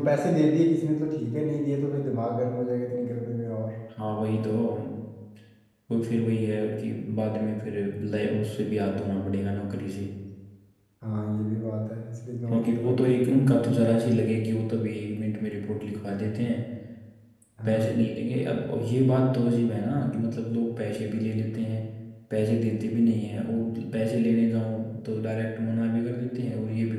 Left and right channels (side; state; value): both; identical; correlation 1.00